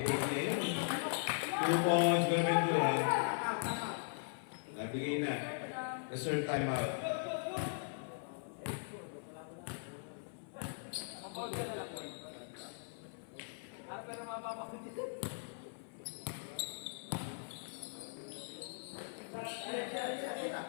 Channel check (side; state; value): right; silent; 51 dB below the other